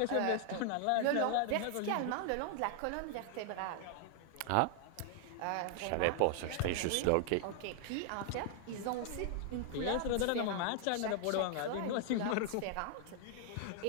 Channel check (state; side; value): different; both; correlation 0.00